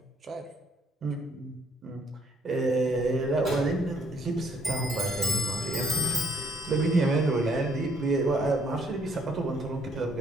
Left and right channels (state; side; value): normal; both; correlation 0.65